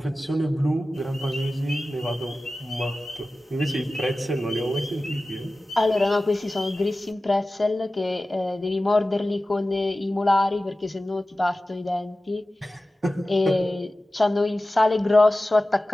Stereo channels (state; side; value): normal; both; correlation 0.95